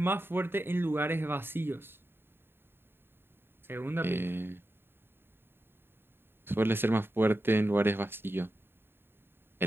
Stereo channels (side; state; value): left; late; 0.11 ms